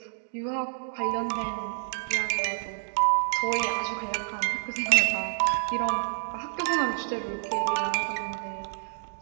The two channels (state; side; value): silent; left; digital silence